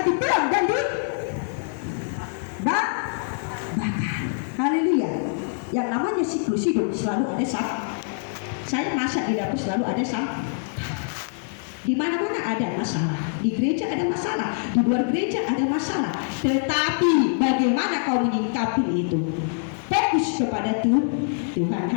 dibuang dan dibakar. Haleluya. Yang namanya siklus hidup selalu ada sampah. Saya masak di dapur selalu ada sampah. Di mana-mana ada masalah. Di gereja ada masalah, di luar gereja ada masalah. Tetapi bagaimana kau menyikapi itu? Fokus kepada Tuhan.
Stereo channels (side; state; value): right; silent; 60 dB below the other